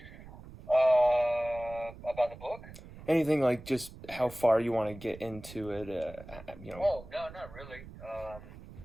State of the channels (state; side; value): noise; right; rumble, 16 dB below the sound